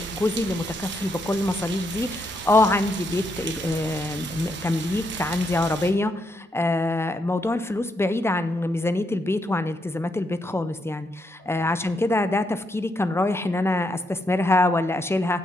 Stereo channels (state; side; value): normal; both; correlation 0.79